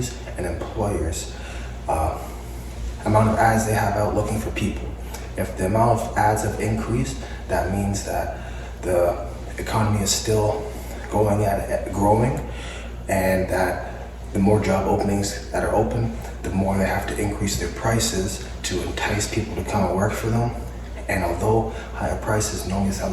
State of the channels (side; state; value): both; identical; correlation 1.00